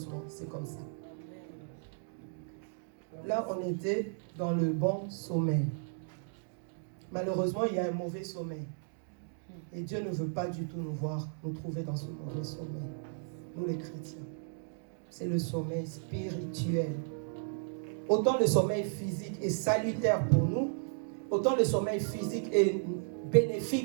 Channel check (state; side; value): silent; left; digital silence